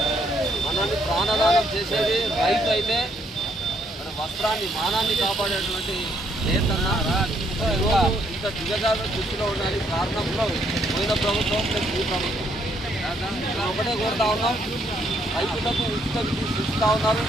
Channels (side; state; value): both; normal; correlation 0.71